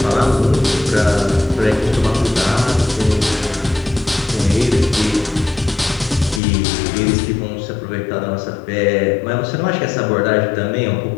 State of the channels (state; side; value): drops out; right; at 6.4 s